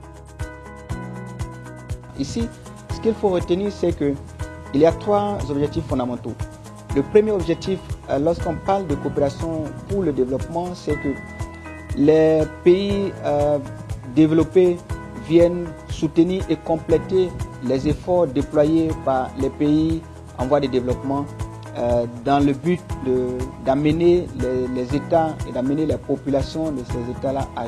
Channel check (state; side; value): identical; both; correlation 1.00